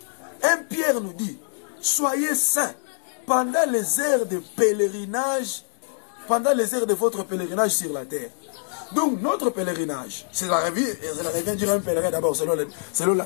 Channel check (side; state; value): right; silent; digital silence